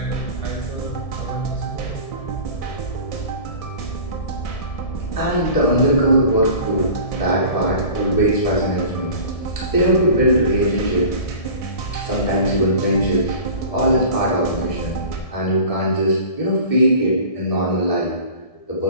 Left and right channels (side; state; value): right; late; 1.6 ms